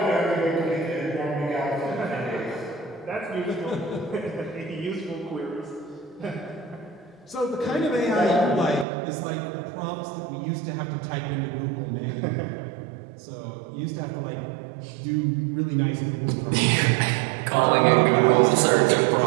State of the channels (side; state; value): left; drops out; at 8.8 s